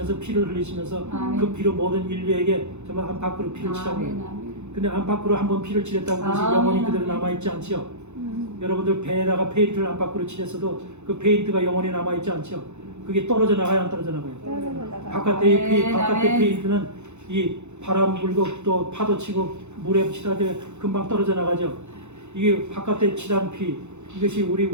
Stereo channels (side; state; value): left; late; 0.83 ms